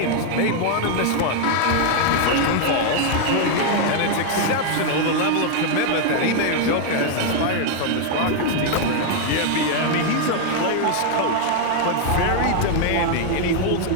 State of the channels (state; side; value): different; both; correlation 0.00